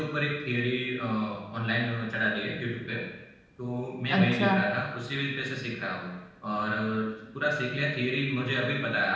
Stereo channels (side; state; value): both; identical; correlation 1.00